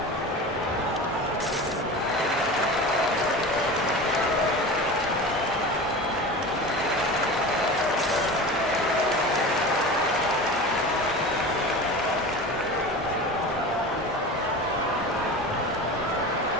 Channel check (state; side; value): normal; both; correlation 0.32